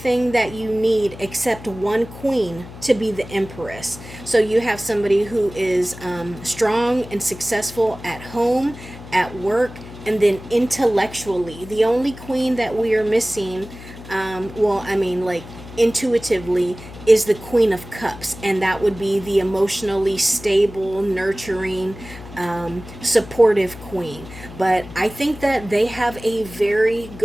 that you need except one queen to be the Empress. So you have somebody who is strong and successful at home, at work, and then intellectually. The only queen that we are missing, like intuitively, is the Queen of Cups, and that would be the emotionally stable, nurturing, supportive queen. But I think that they have a very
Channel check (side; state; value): left; noise; hum, 15 dB below the sound